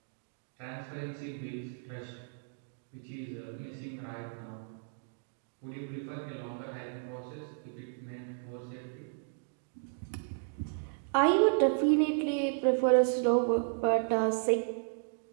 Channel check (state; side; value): silent; left; digital silence